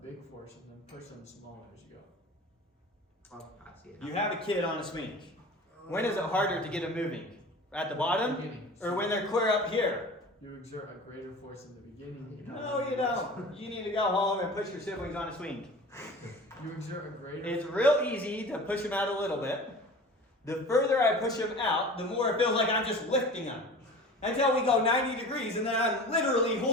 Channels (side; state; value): both; normal; correlation 0.38